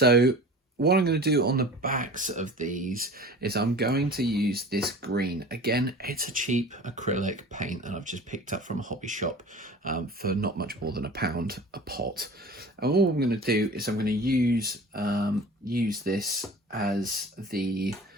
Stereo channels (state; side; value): normal; both; correlation 0.39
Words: what I'm going to do on the backs of these is I'm going to use this green. Again, it's a cheap acrylic paint that I've just picked up from a hobby shop for not much more than £1 a pot. And all I'm going to do is I'm going to use this as the